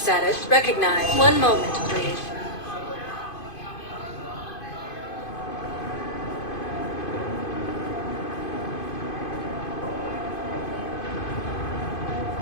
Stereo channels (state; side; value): late; right; 2.5 ms